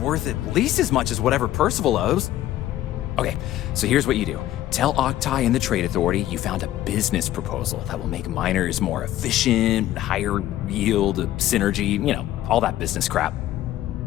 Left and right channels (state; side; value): quieter; right; 13.7 dB